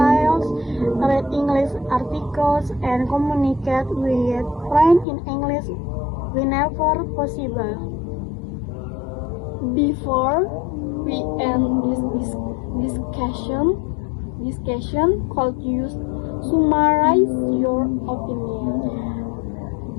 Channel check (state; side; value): drops out; right; at 5.1 s